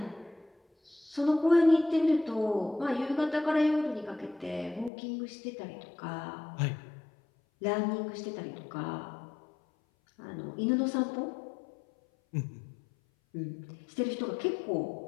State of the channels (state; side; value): drops out; right; at 4.9 s